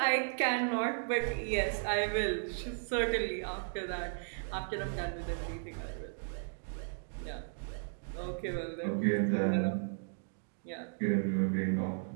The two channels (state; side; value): silent; left; digital silence